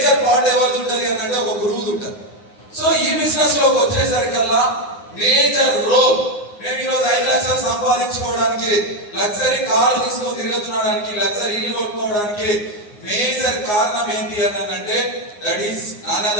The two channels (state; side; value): late; right; 9.6 ms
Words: పార్ట్ ఎవరిది ఉంటది అంటే ఒక గురువుది ఉంటది. సో ఈ బిజినెస్ లోకి వచ్చేసరికల్లా మేజర్ రోల్, మేము ఈరోజు 5 లక్షలు సంపాదించుకోవడానికి, లగ్జరీ కార్లు తీసుకొని తిరుగుతున్నాడానికి, లగ్జరీ ఇల్లు కొట్టుకోవడానికి మేజర్ కారణం ఏంటి అని అంటే that is none